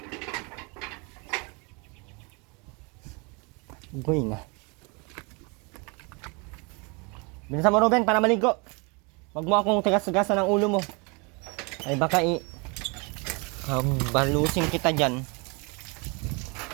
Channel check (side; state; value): left; quieter; 30.7 dB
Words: Going ah. Bilisan mo, Ruben, para maligo. Wag mo akong tigas-tigasan ng ulo mo. Ay baka balusin kita dyan.